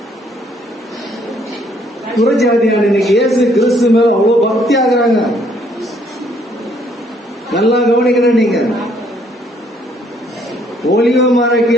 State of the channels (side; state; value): both; normal; correlation 0.66